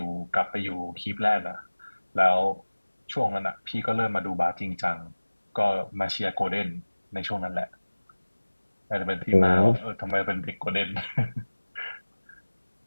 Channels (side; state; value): both; inverted; correlation -1.00